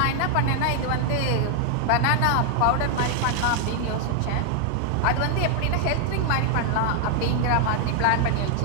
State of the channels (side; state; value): both; different; correlation 0.00